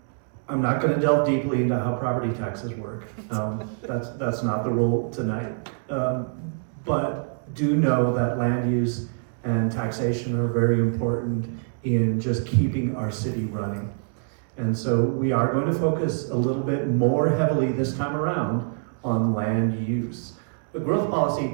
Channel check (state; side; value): silent; left; digital silence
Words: I'm not going to delve deeply into how property taxes work. That's not the role tonight. But do know that land use and taxation are very important in just keeping our city running. And so we are going to focus a little bit more heavily this time around on land use. The growth